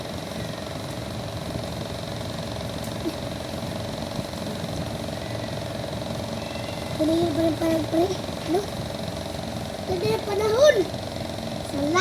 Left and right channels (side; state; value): both; identical; correlation 1.00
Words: Panayin pa rin pare. Ano? Ganda yung panahon.